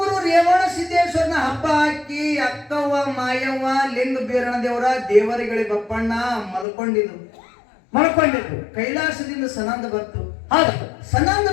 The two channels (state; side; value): drops out; right; at 6.7 s